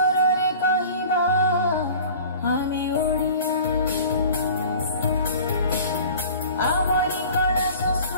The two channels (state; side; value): inverted; both; correlation -0.44